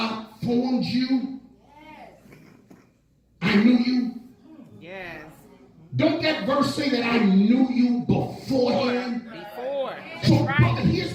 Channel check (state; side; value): identical; both; correlation 1.00